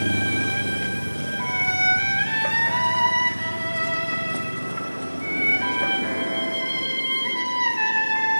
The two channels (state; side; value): inverted; both; correlation -1.00